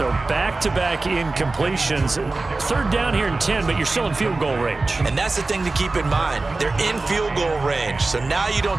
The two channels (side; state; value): left; quieter; 3.4 dB